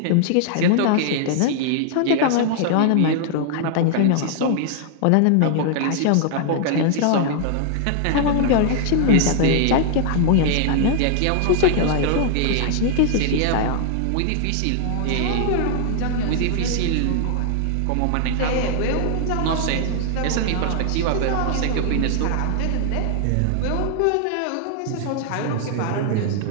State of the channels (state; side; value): different; both; correlation 0.00